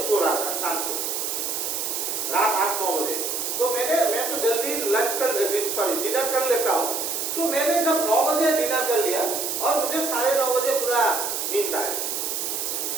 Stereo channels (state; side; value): noise; right; hiss, 2 dB below the sound